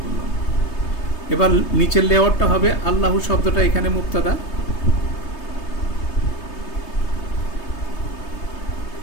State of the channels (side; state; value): right; late; 3.3 ms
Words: করলাম। এবার নিচের লেআউটটা হবে আল্লাহু শব্দটা এখানে মুক্তাদা,